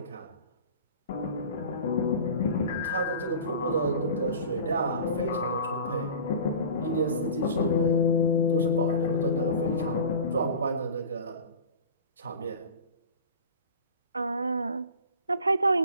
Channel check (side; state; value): both; inverted; correlation -0.39